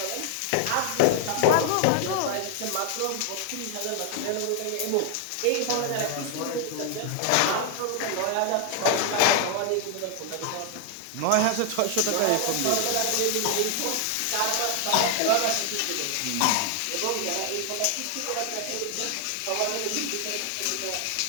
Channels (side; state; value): both; different; correlation 0.00